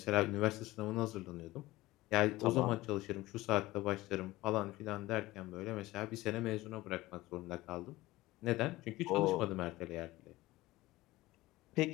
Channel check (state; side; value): quieter; right; 18.5 dB